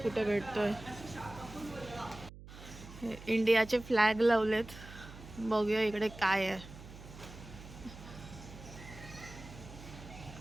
कुठे भेटतोय. हे इंडियाचे फ्लॅग लावलेत, बघूया इकडे काय आहे.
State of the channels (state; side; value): noise; right; hum, 16 dB below the sound